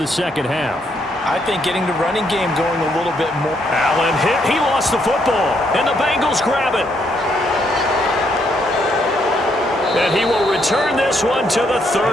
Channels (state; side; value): normal; both; correlation 0.74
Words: second half? I think getting the running game going a little bit more. Allen hit. He lost the football. And the Bengals grab it. And he will return this one to the